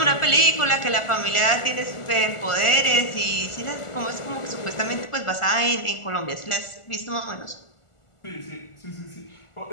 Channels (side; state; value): right; late; 1.4 ms